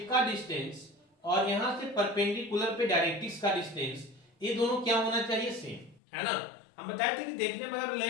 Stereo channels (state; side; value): drops out; right; at 6.0 s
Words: का डिस्टेंस और यहाँ से परपेंडिकुलर पे डायरेक्ट्रिक्स का डिस्टेंस, ये दोनों क्या होना चाहिए, सेम, है ना। हम बताए थे कि देखने में अगर